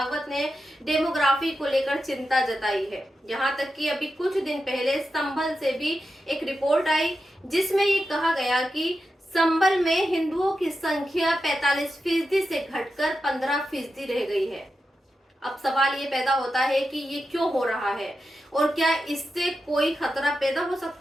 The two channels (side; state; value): both; normal; correlation 0.89